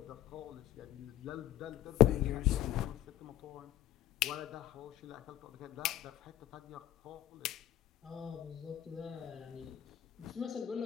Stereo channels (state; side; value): quieter; right; 12.8 dB